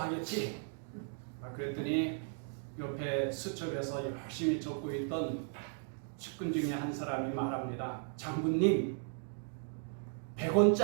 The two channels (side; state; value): left; silent; 54 dB below the other